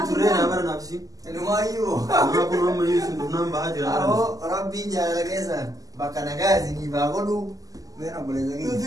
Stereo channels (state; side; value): late; left; 0.17 ms